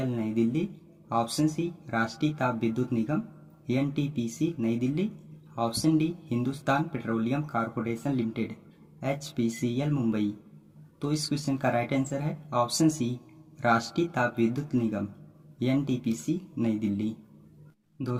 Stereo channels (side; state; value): both; identical; correlation 1.00